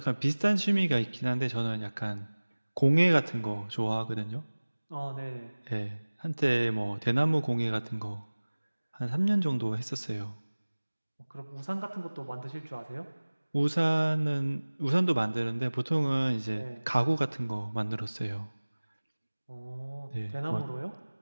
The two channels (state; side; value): inverted; both; correlation -1.00